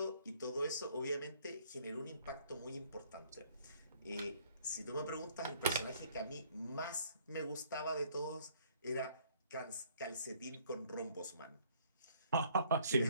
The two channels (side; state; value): both; inverted; correlation -0.61